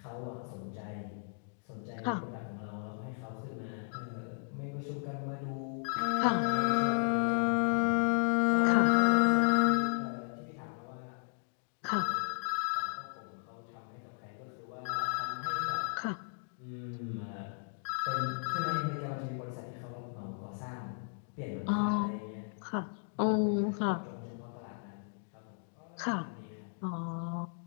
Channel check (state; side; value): silent; right; digital silence